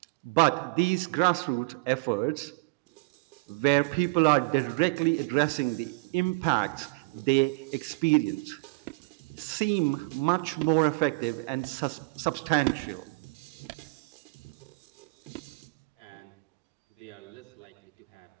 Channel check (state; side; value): quieter; left; 27.5 dB